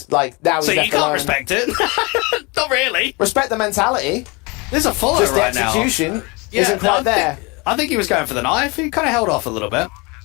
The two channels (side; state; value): right; quieter; 27.9 dB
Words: like, now he's so left you can't alone. respect it? Not really. Respect the mentality. There's a follow Just right the now. execution isn't quite there. I think he was going for the knife. He kind of held off a little bit.